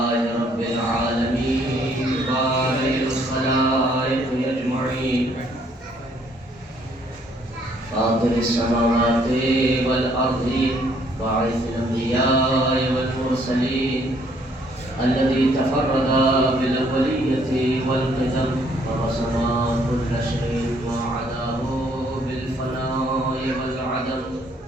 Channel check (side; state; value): both; normal; correlation 0.65